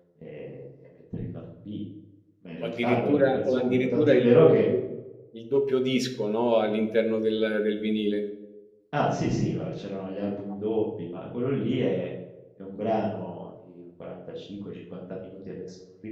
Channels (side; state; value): both; identical; correlation 1.00